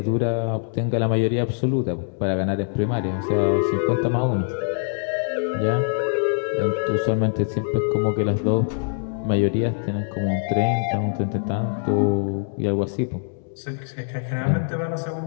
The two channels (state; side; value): silent; right; digital silence